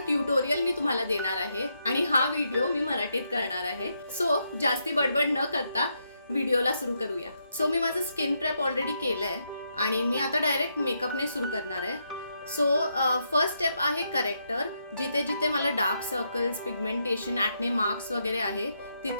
ट्युटोरियल मी तुम्हाला देणार आहे आणि हा व्हिडिओ मी मराठीत करणार आहे। सो जास्ती बडबड न करता व्हिडिओला सुरू करूया। सो मी माझं स्किन प्रेप ऑलरेडी केलंय आणि मी आता डायरेक्ट मेकअपने सुरू करणार आहे। सो फर्स्ट स्टेप आहे करेक्टर। जिथे जिथे मला dark circles, pigmentation, acne marks वगैरे आहे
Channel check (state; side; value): inverted; both; correlation -0.80